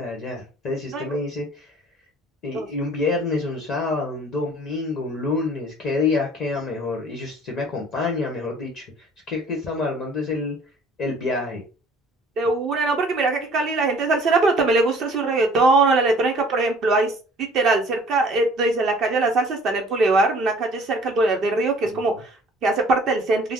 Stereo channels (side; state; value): both; normal; correlation 0.52